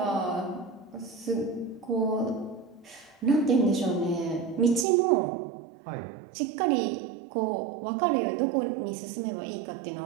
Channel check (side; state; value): left; drops out; at 4.9 s